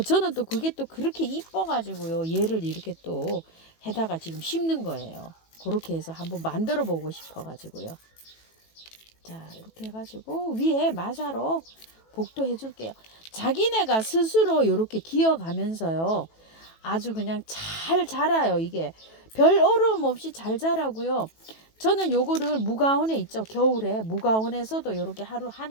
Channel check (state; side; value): late; right; 18 ms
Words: 저는 또 그게 또 그렇게 이뻐가지고요. 얘를 이렇게 또 해다가 지금 심는 거예요. 그렇게 해서 한번 만들어 보고 싶어가지고요. 자, 이렇게 해가지고 위에 마사로 복도 해줄게요. 자기네가 스스로 이렇게 기어가면서요. 아주 그냥 잘 자라요. 이게 별 어려움 없이 잘 자라고요. 저는 요거를 무가온에 있죠. 겨울에 무가온에서도 이렇게 하루